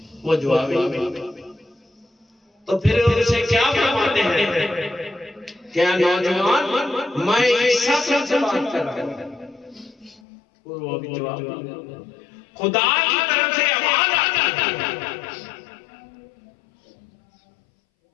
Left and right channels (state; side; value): drops out; right; at 10.2 s